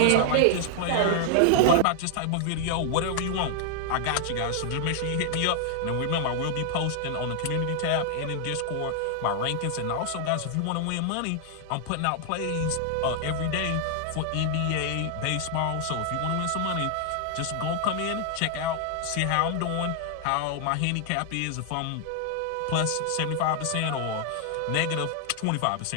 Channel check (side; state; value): both; different; correlation 0.00